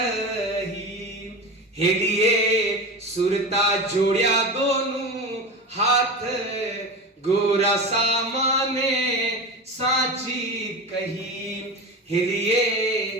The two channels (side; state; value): both; normal; correlation 0.26